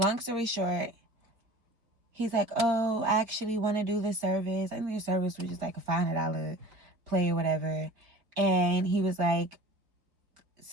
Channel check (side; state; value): left; late; 4.1 ms